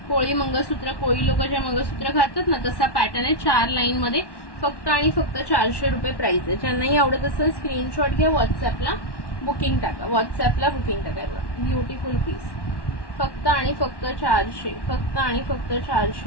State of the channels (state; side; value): late; right; 1.1 ms